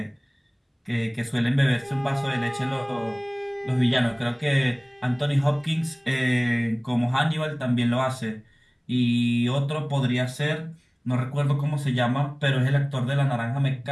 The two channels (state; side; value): identical; both; correlation 1.00